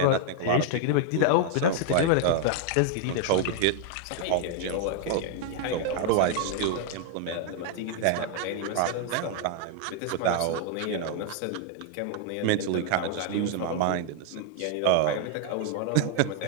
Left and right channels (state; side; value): different; both; correlation 0.00